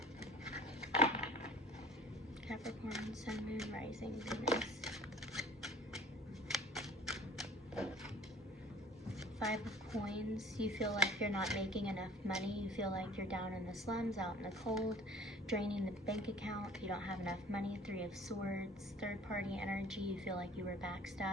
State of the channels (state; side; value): normal; both; correlation 0.48